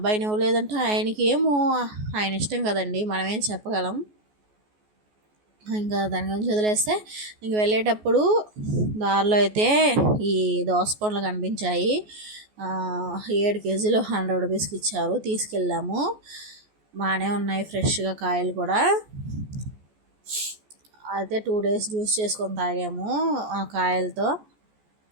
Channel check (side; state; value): left; late; 14 ms